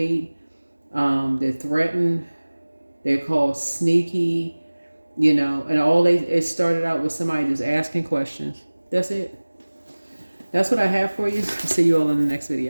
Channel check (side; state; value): both; inverted; correlation -1.00